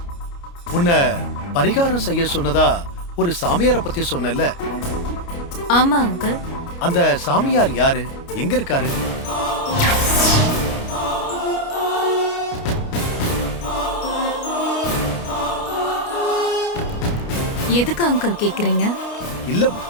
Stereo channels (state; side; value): late; right; 29 ms